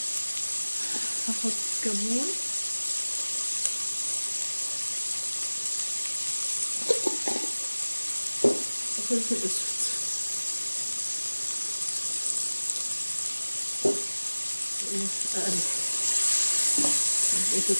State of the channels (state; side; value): inverted; both; correlation -1.00